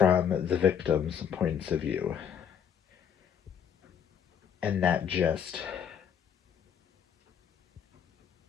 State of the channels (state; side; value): quieter; right; 8.1 dB